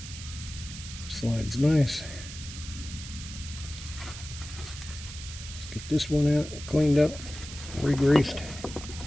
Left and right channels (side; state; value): right; noise; hiss, 12 dB below the sound